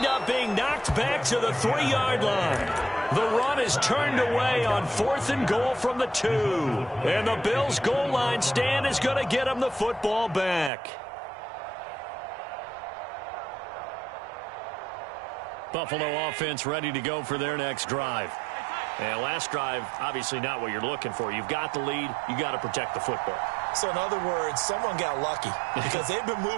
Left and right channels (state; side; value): drops out; left; at 10.7 s